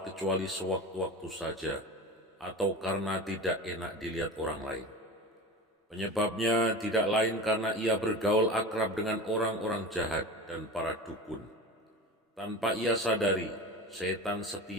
kecuali sewaktu-waktu saja, atau karena tidak enak dilihat orang lain. Penyebabnya tidak lain karena ia bergaul akrab dengan orang-orang jahat dan para dukun. Tanpa ia sadari, setan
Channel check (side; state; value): both; normal; correlation 0.31